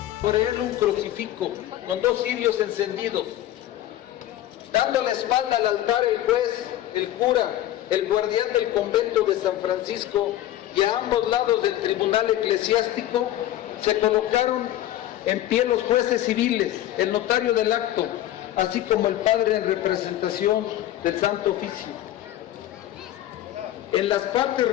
sobre él un crucifijo con 2 cirios encendidos. Dando la espalda al altar, el juez, el cura, el guardián del convento de San Francisco y a ambos lados del tribunal eclesiástico se colocaron en pie los jueces civiles, el notario del acto, así como el padre en representación del Santo Oficio. En las partes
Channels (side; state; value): right; quieter; 13.4 dB